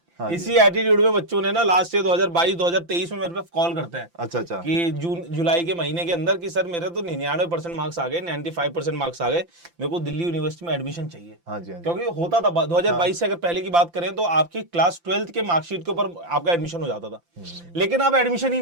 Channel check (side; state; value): left; late; 5.8 ms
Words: इसी एटीट्यूड में बच्चों ने ना लास्ट ईयर 2022-2023 में मेरे पे कॉल करते हैं अच्छा कि जून जुलाई के महीने के अंदर कि सर मेरे तो 99% मार्क्स आ गए, 95% मार्क्स आ गए, मेरे को दिल्ली यूनिवर्सिटी में एडमिशन चाहिए। क्योंकि होता था 2022 से अगर पहले की बात करें तो आपकी क्लास 12th के मार्कशीट के ऊपर आपका एडमिशन हो जाता था, लेकिन अब एडमिशन ही